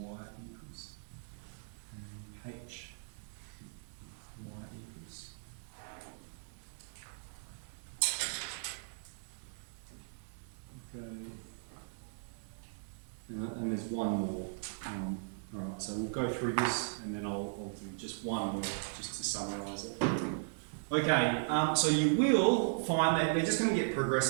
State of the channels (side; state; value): left; silent; digital silence